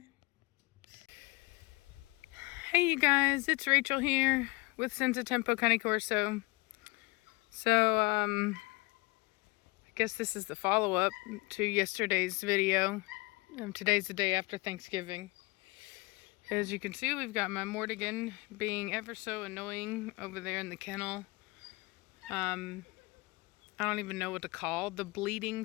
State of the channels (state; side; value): quieter; right; 24.9 dB